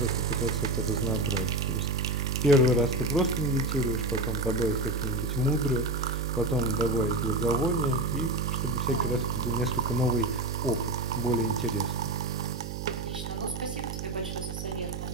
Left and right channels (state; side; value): noise; right; hum, 6 dB below the sound